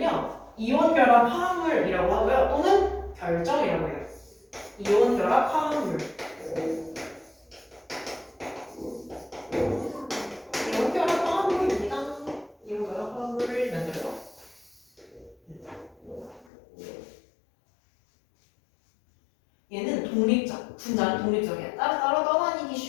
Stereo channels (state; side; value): drops out; right; at 16.4 s